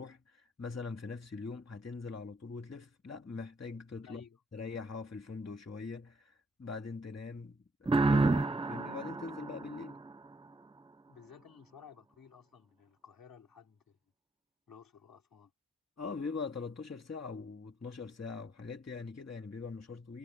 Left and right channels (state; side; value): normal; both; correlation 0.72